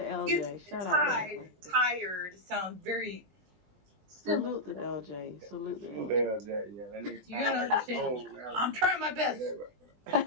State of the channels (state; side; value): late; left; 20 ms